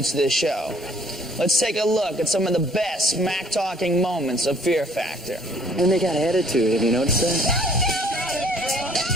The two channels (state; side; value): normal; both; correlation 0.58